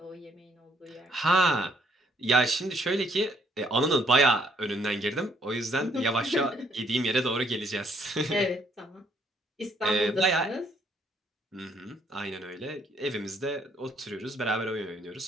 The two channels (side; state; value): both; normal; correlation 0.67